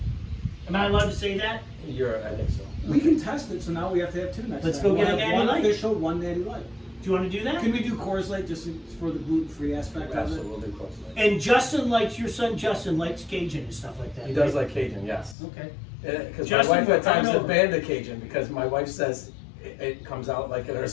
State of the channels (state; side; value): drops out; right; at 15.4 s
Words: Am I allowed to say that? I think so. We can test it, so now we have to have 2 next Let's time. go get We'll a have Natty one Light. official, one natty light. Do you want to do that? Can we do Coors Light just for the gluten-free aspect of Absolutely, it? we'll do close. And Justin likes, your son Justin likes Cajun and stuff like that. He does right? like Cajun, yes. Okay. Because my Justin, wife we're at times coming has over. banned the Cajun because my wife says it comes out like in our